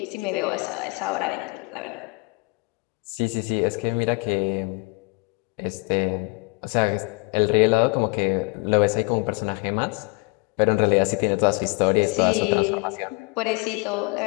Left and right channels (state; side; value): quieter; right; 29.1 dB